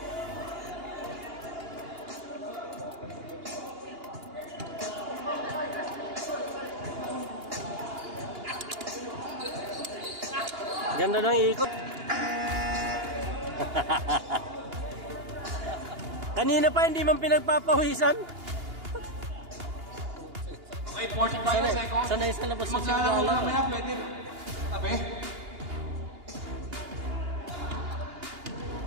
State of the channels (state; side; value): late; left; 2.8 ms